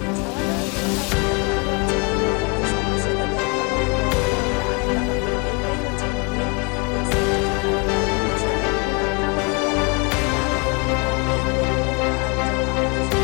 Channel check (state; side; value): quieter; right; 32.2 dB